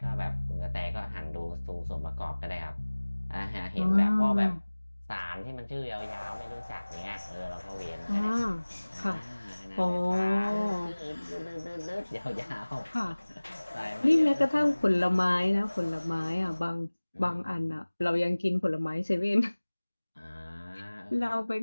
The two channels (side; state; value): both; inverted; correlation -1.00